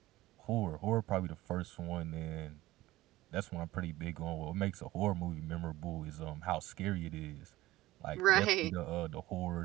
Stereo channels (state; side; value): quieter; left; 17.3 dB